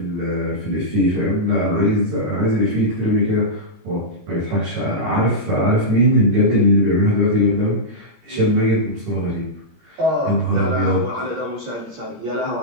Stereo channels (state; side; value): late; left; 17 ms